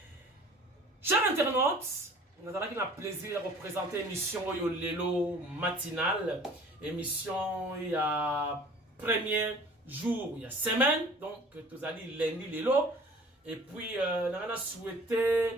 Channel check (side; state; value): both; normal; correlation 0.48